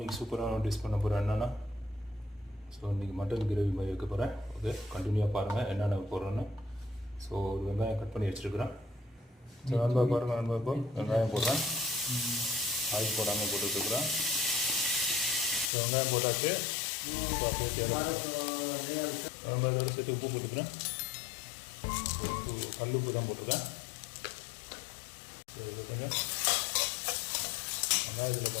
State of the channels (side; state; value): right; drops out; at 15.7 s